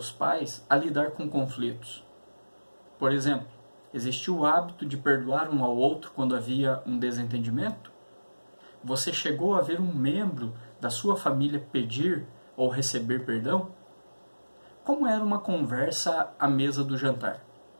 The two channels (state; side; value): inverted; both; correlation -1.00